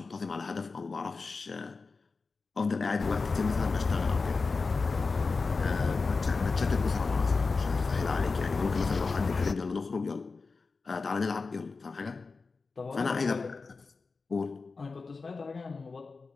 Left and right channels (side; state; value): right; quieter; 4.2 dB